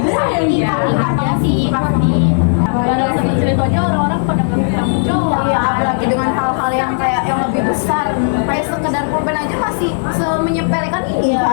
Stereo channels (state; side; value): silent; right; digital silence